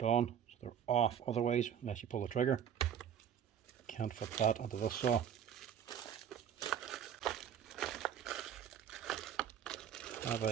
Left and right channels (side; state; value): left; quieter; 9.0 dB